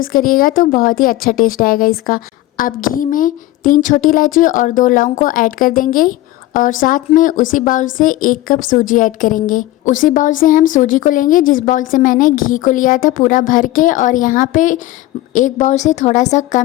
करिएगा तो बहुत ही अच्छा टेस्ट आएगा इसका। अब घी में 3 छोटी इलायची और 2 लौंग को ऐड कर देंगे और साथ में उसी बाउल से 1 कप सूजी ऐड करेंगे। उसी बाउल से हम सूजी को लेंगे जिस बाउल से मैंने घी को लिया था पूरा भर के, और यहाँ पे एक बाउल से थोड़ा सा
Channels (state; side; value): quieter; right; 16.3 dB